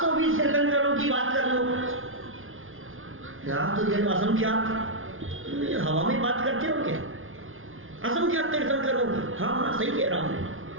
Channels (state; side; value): late; left; 0.59 ms